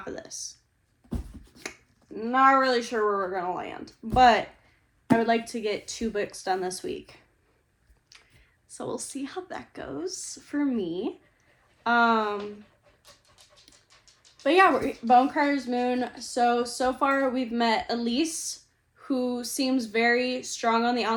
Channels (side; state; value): both; identical; correlation 1.00